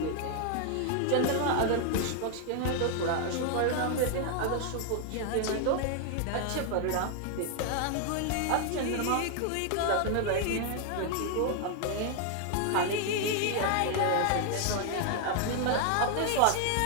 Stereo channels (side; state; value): both; different; correlation 0.00